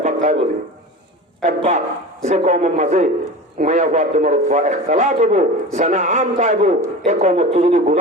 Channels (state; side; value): normal; both; correlation 0.32